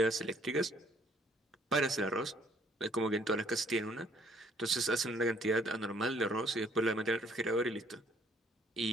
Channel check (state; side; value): normal; both; correlation 0.63